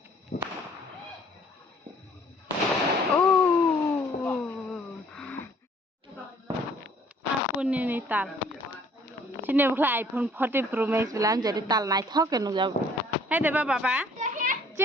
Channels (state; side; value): normal; both; correlation 0.58